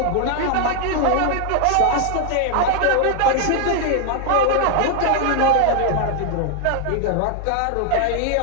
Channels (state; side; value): different; both; correlation 0.00